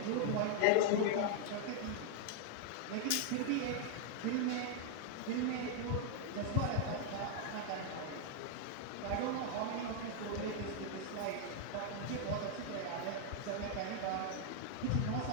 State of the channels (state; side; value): different; both; correlation -0.01